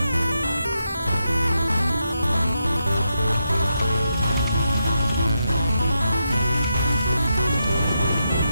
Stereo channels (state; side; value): inverted; both; correlation -0.84